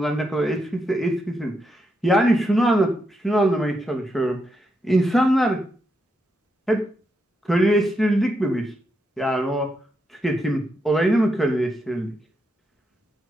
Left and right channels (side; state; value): both; normal; correlation 0.82